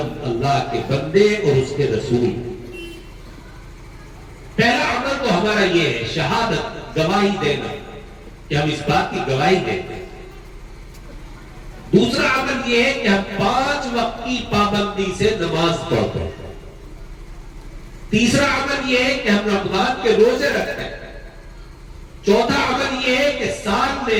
اللہ کے بندے اور اس کے رسول۔ پہلا عمل تو ہمارا یہ ہے، شہادت، گواہی دینا، کہ ہم اس بات کی گواہی دیتے ہیں۔ دوسرا عمل یہ ہے کہ ہم 5 وقت کی پابندی سے نماز پڑھتے ہیں۔ تیسرا عمل یہ ہے کہ ہم رمضان کے روزے رکھتے ہیں۔ چوتھا عمل یہ ہے کہ سال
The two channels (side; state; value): both; identical; correlation 1.00